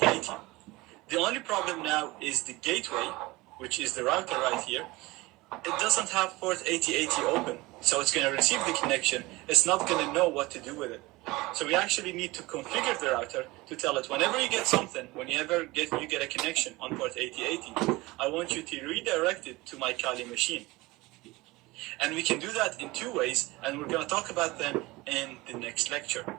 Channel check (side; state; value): left; quieter; 21.3 dB